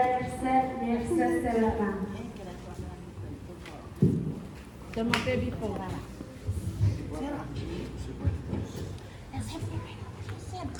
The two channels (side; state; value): both; identical; correlation 1.00